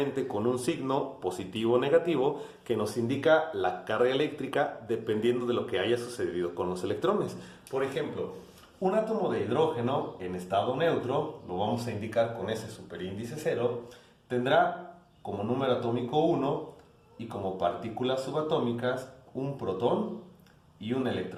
con un signo positivo o negativo que nos indica la carga eléctrica dependiendo de lo que haya sucedido con los electrones. Por ejemplo, un átomo de hidrógeno en estado neutro, lo vamos a indicar con ese superíndice 0, tendrá como número atómico 1 y como partículas subatómicas un protón y un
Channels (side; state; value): both; identical; correlation 1.00